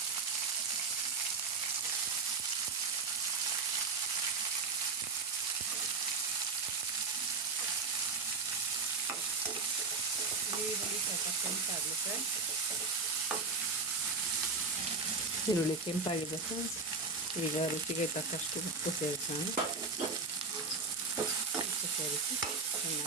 ಈರುಳ್ಳಿ ಸ್ವಲ್ಪ ಕೆಂಪಾಗಲಿ ಫ್ರೆಂಡ್ಸ್. ಈರುಳ್ಳಿ ಕೆಂಪಾಗಿದೆ ಫ್ರೆಂಡ್ಸ್. ಈಗ ರುಚಿಗೆ ತಕ್ಕಷ್ಟು ಉಪ್ಪು ಸೇರಿಸೋಣ. ಉಪ್ಪು ಸೇರಿಸಿ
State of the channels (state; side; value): quieter; left; 4.6 dB